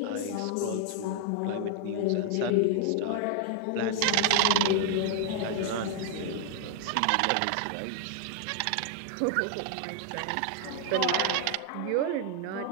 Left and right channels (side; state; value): both; different; correlation 0.00